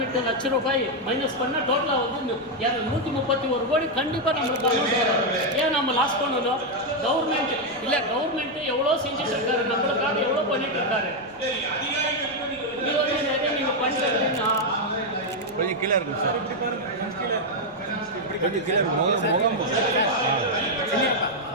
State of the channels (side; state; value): right; noise; rumble, 27 dB below the sound